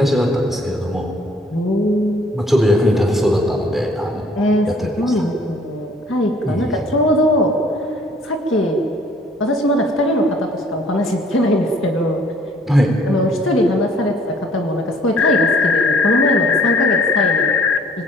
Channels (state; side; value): normal; both; correlation 0.57